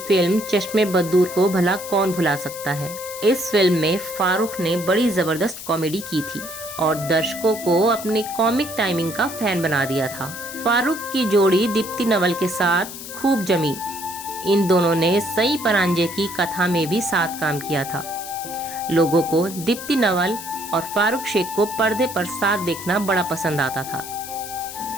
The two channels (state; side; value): noise; left; hiss, 11 dB below the sound